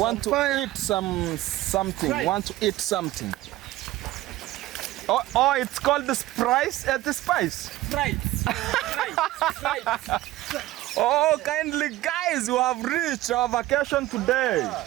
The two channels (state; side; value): quieter; left; 16.4 dB